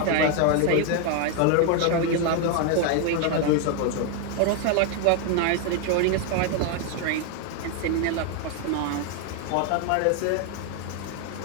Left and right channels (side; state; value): both; different; correlation 0.01